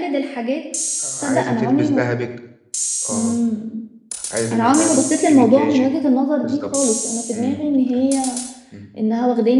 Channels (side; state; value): both; identical; correlation 1.00